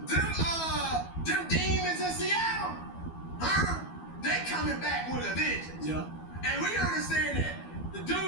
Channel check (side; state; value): right; late; 12 ms